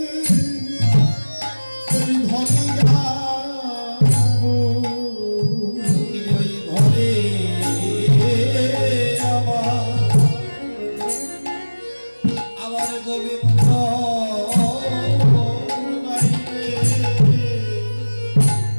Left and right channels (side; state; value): both; inverted; correlation -1.00